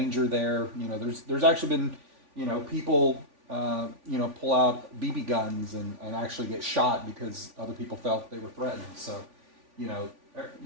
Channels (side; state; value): left; late; 3.5 ms